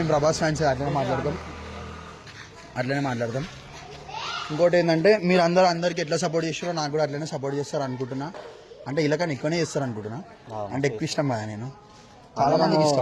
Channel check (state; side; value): identical; both; correlation 1.00